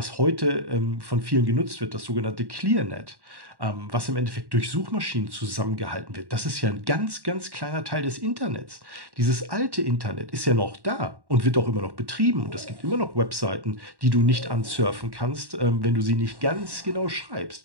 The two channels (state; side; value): late; left; 1.1 ms